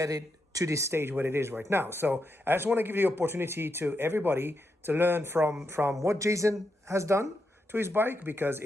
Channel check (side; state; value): both; normal; correlation 0.84